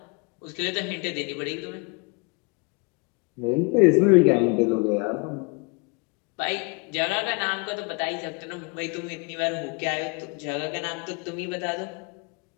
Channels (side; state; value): right; quieter; 31.9 dB